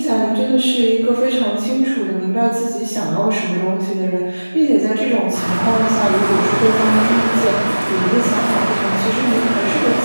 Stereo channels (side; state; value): both; inverted; correlation -1.00